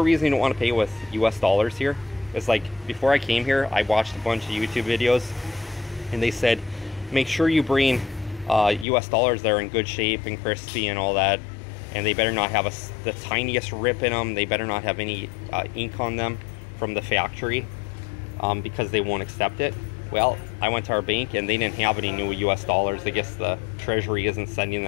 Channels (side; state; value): right; drops out; at 8.8 s